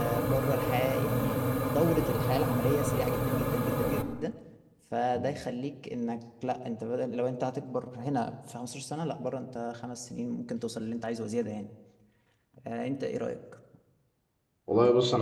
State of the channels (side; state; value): both; identical; correlation 1.00